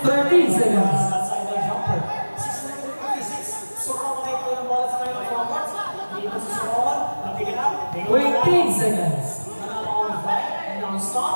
30 seconds. Outside the jumper. 6-56. Soro tayo yung bola sa kayo ng forward. Dito si Soro. Napigil up. 20 seconds.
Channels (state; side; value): inverted; both; correlation -1.00